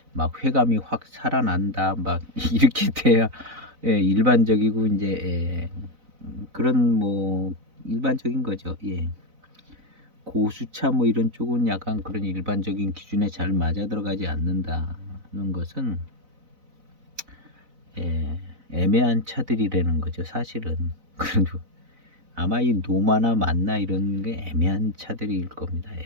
막 회감이 확 살아난다 막 이렇게 돼야 일반적이고 이제 그런 뭐 일반적인 거죠. 고수차 뭐 이런 쪽은 약간 그런 일반적인 기준에 잘 맞아 들어가지 않는다는 것은 애매한 차들이라는 거죠. 사실은 그래도 아마 이 노마나 만나 이런 게 애매한 차들일 겁니다.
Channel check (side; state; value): left; late; 4.0 ms